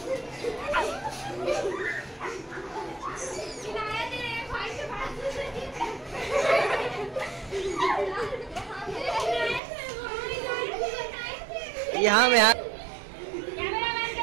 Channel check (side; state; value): left; drops out; at 9.6 s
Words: यहाँ में कैमरामैन के